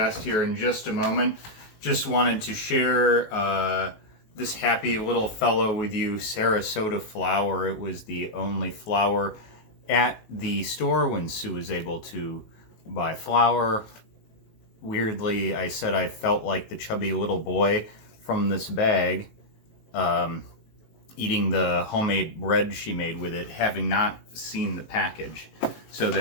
here in just a moment. Just wanted to share this happy little fellow with you, Sarasota flour. It was the only flour at the store when Sue was able to buy flour. Weirdly, I said I felt like the chubby little boy from this bag, eating the homemade bread she made with it, having not seen the package. So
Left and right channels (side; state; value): right; late; 19 ms